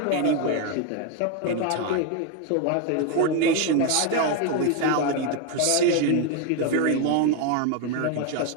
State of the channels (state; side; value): different; both; correlation 0.01